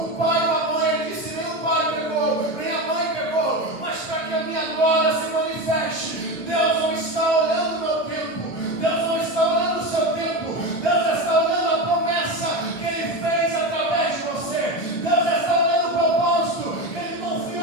O pai ou a mãe? Ele disse: nem o pai pegou, nem a mãe pegou, mas para que a minha glória se manifeste. Deus não está olhando o meu tempo, Deus não está olhando o seu tempo, Deus está olhando a promessa que Ele fez através de você. Deus está olhando o propósito que Ele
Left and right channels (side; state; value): right; late; 1.4 ms